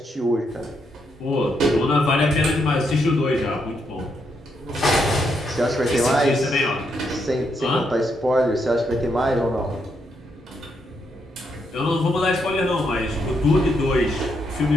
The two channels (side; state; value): both; normal; correlation 0.78